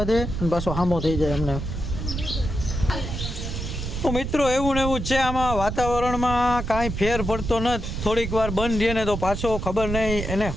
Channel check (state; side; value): noise; right; rumble, 5 dB below the sound